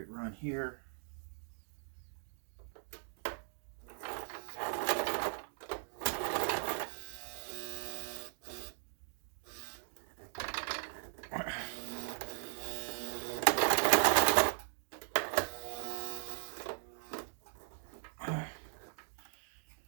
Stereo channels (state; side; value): silent; left; digital silence